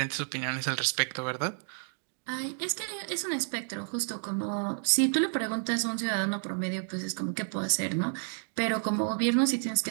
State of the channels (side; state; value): left; silent; digital silence